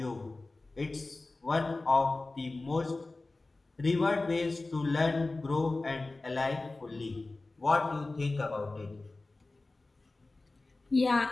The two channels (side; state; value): right; quieter; 3.2 dB